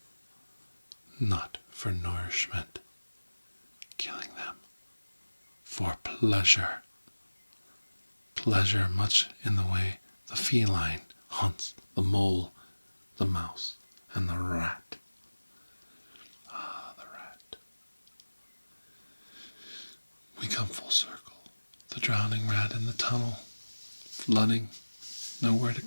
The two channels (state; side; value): inverted; both; correlation -1.00